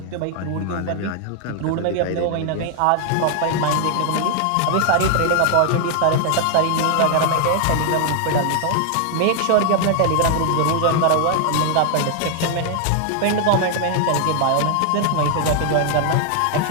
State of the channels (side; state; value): both; different; correlation 0.00